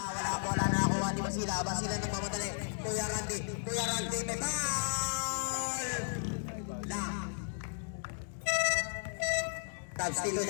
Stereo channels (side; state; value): right; silent; digital silence